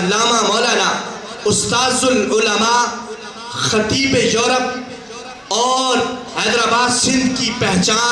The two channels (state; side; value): identical; both; correlation 1.00